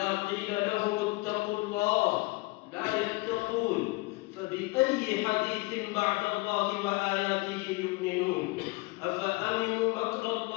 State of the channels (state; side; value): quieter; right; 23.8 dB